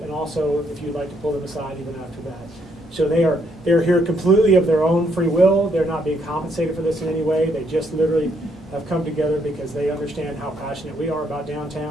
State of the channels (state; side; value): normal; both; correlation 0.72